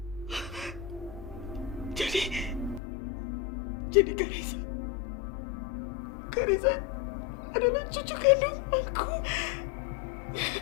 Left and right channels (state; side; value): drops out; right; at 2.8 s